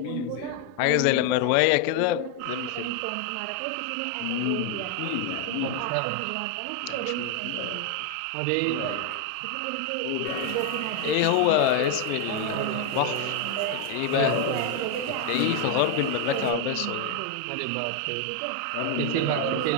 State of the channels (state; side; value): different; both; correlation 0.01